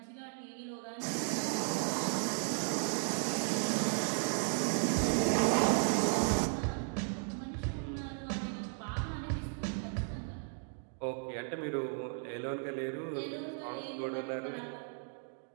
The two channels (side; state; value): left; silent; 54 dB below the other